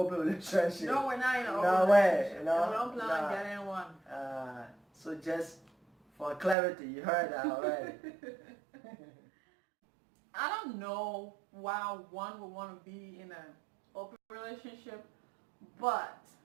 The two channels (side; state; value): left; drops out; at 6.6 s